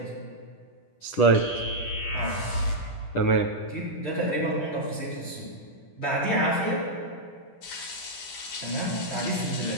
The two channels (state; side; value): late; right; 10 ms